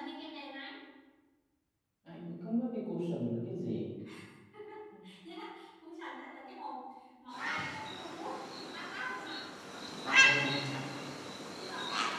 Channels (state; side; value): identical; both; correlation 1.00